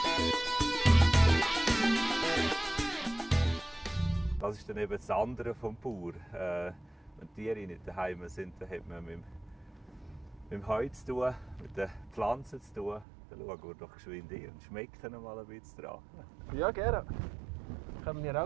Das ist dann eben das andere vom Bauer. Wenn die Tiere nicht daheim sind, dann hat man mit dem Heu zu tun, mit den Pflanzen zu tun. Dann schauen wir doch geschwind hin und schmecken mal ein bisschen dran. Ja, gerne. Kommen wir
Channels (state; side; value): drops out; left; at 13.1 s